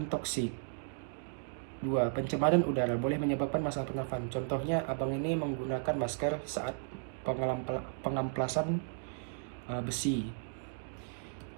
toksik. 2. Pencemaran udara boleh menyebabkan masalah pernafasan. Contohnya, abang ini menggunakan masker saat pengamplasan besi.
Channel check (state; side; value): silent; left; digital silence